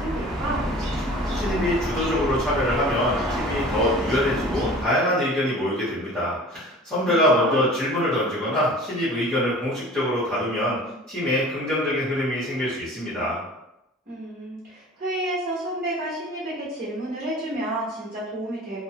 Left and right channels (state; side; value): normal; both; correlation 0.43